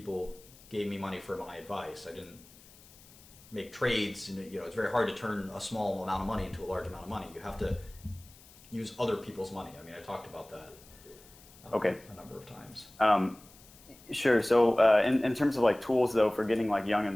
gave me money for my advice. I didn't make trades. It's very hard to turn a small amount of money into a large amount of money. You have to use other people's money. I mean, I talked about that a number of times. Sure. So in terms of like tools, though, for getting like young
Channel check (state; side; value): noise; left; hiss, 23 dB below the sound